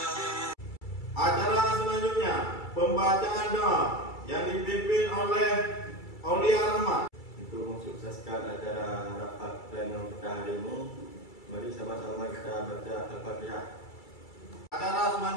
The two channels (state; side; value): late; right; 2.3 ms